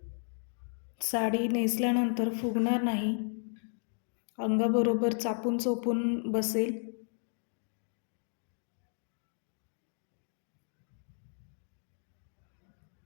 साडी नेसल्यानंतर फुगणार नाही, अंगाबरोबर चापून चोपून बसेल.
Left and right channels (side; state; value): right; silent; 55 dB below the other